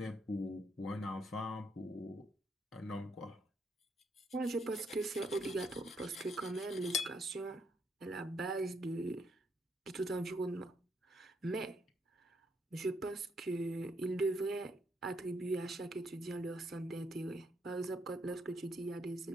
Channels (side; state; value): both; normal; correlation 0.74